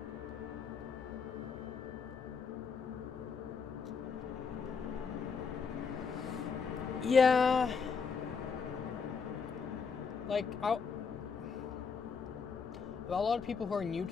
Yeah, like a lot of people who are new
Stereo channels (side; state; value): right; quieter; 5.5 dB